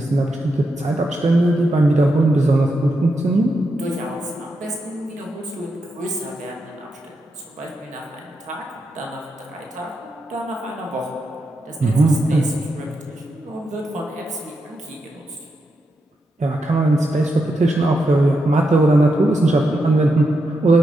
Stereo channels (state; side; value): normal; both; correlation 0.85